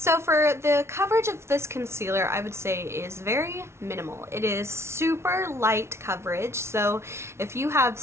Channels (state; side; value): late; left; 0.13 ms